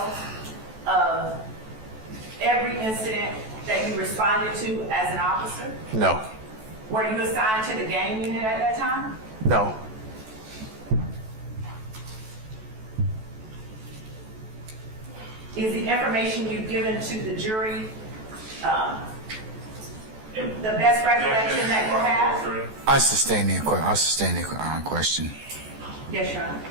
of every incident that you responded to as an officer? No. Were you assigned to the gang unit at that time? No. Is the information you've given to the jury the best recollection that you have? I sustain the question. Yes, Your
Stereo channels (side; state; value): left; late; 14 ms